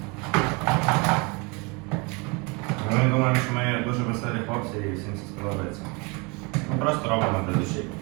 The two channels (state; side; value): quieter; left; 29.3 dB